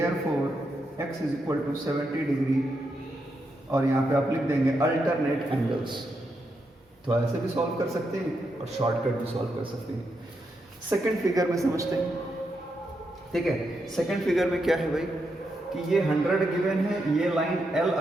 x is equal to 70 degree, और यहाँ पे आप लिख देंगे अल्टरनेट एंगल्स। तो ऐसे भी सॉल्व कर सकते हैं और शॉर्टकट भी सॉल्व कर सकते हैं। सेकंड फिगर में समझते हैं, ठीक है। सेकंड फिगर में क्या है भाई, कि ये 100 गिवन है, ये लाइन L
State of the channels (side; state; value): both; normal; correlation 0.83